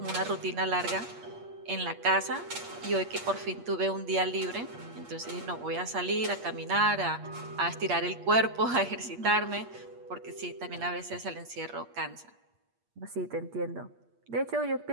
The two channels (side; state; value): left; late; 8.5 ms